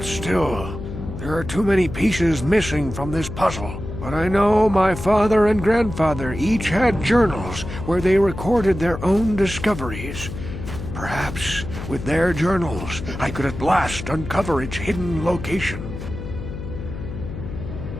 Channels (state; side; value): noise; left; hum, 8 dB below the sound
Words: still, there are too many pieces missing from this puzzle. But I know my father and grandfather each had journals where they recorded their own discoveries. Perhaps, with their journals, I could at last uncover its hidden location.